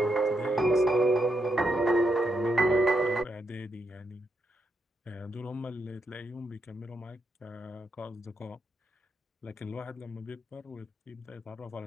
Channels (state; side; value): normal; both; correlation 0.81